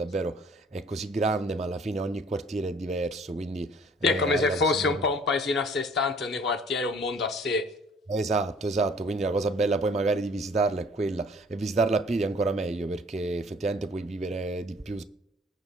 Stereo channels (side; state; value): both; normal; correlation 0.55